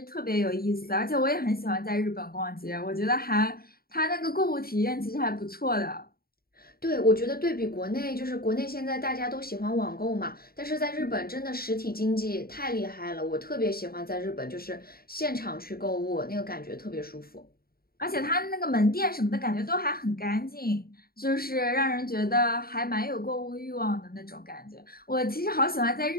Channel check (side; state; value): right; late; 0.44 ms